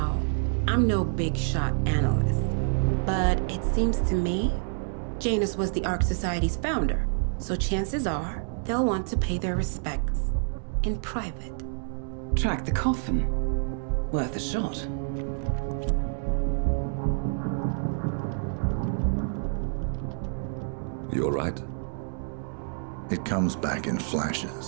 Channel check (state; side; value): silent; left; digital silence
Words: I'm no big shot analyst, but it seems to me Janus was the Ark Society's founder, so chances are they'll want to pay their respects in private. Track the coffin. Worth a shot. You all right? It comes back in